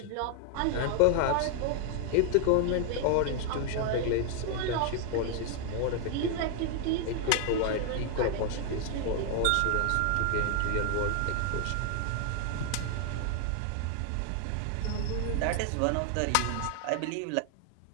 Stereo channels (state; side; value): different; both; correlation 0.00